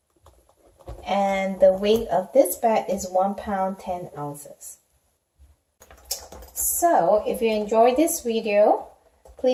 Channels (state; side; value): identical; both; correlation 1.00